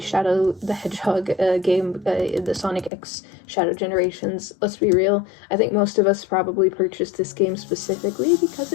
the Hedgehog game, the Sonic X Shadow Generations. Let's be real, I think most of us probably purchased this game specifically because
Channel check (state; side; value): drops out; right; at 2.9 s